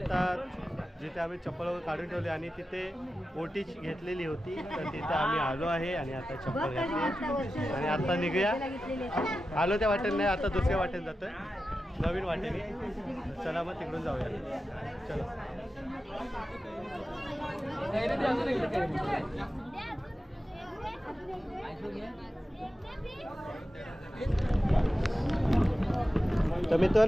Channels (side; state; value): both; normal; correlation 0.92